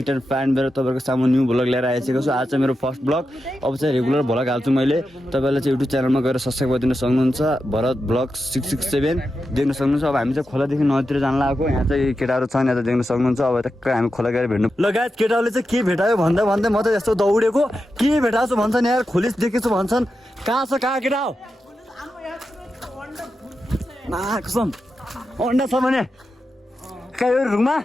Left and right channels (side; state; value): both; normal; correlation 0.89